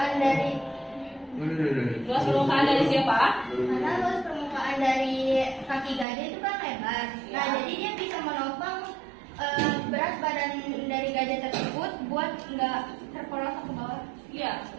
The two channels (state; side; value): drops out; left; at 6.1 s